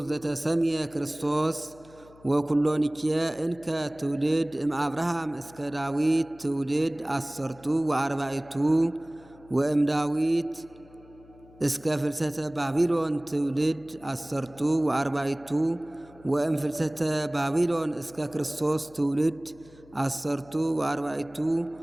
ዘተሰምየ ክርስቶስ ወኩሎንኬ እንከ ትውልድ እምአብርሃም እስከ ዳዊት ትውልድ አሰርቱ ወአርባዕቱ ወእም ዳዊት እስከ ፍልሰተ ባቢሎን ትውልድ አሰርቱ ወአርባዕቱ ወእም ፍልሰተ ባቢሎን እስከ ክርስቶስ ትውልድ አሰርቱ ወአርባዕቱ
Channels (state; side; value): noise; left; hum, 24 dB below the sound